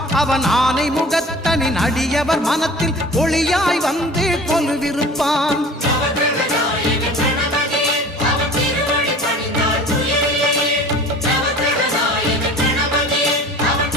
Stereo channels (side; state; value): both; normal; correlation 0.43